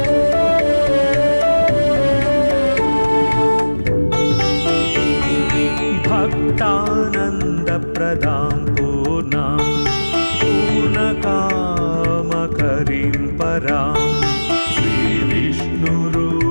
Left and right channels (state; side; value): inverted; both; correlation -1.00